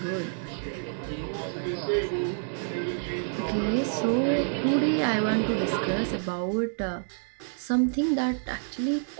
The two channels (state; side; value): silent; left; digital silence